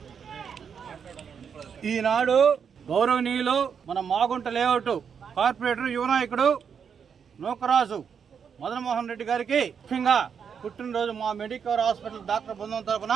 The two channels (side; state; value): left; quieter; 7.0 dB